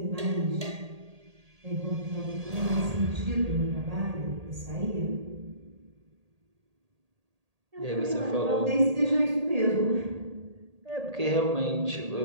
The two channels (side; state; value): left; late; 1.8 ms